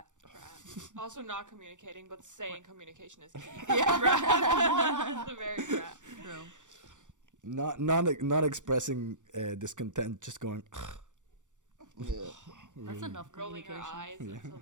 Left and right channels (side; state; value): left; late; 0.86 ms